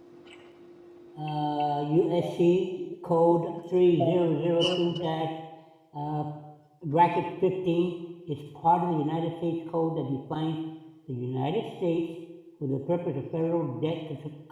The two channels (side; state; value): both; identical; correlation 1.00